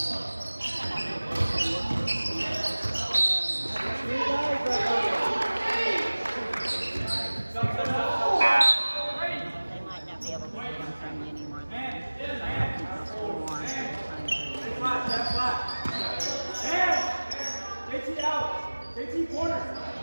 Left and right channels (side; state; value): both; inverted; correlation -1.00